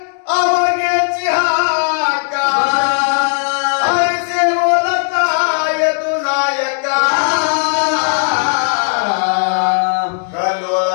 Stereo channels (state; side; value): silent; right; 69 dB below the other